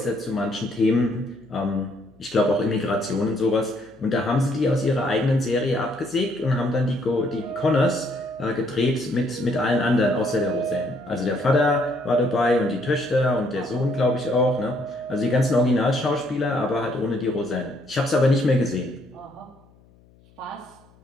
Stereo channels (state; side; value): noise; left; hum, 29 dB below the sound